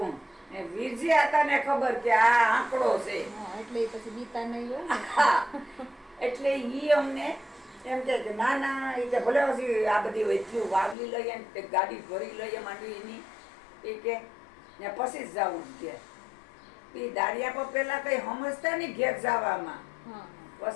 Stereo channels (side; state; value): right; drops out; at 11.0 s